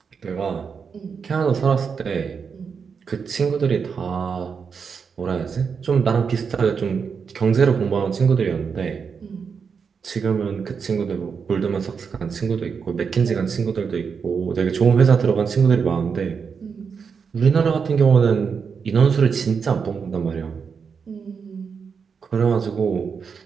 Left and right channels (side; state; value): left; quieter; 6.0 dB